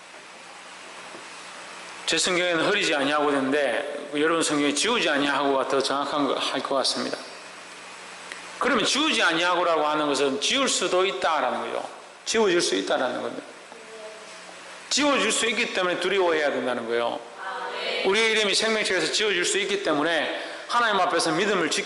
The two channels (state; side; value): identical; both; correlation 1.00